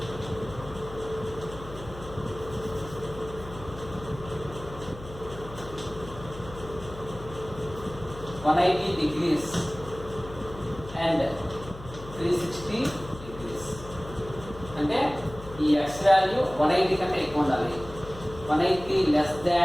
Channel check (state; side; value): noise; left; hum, 14 dB below the sound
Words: 180 degrees and 360 degrees. అంటే ఈ x వాల్యూ 180 కంటే ఎక్కువ ఉండాలి, 180 less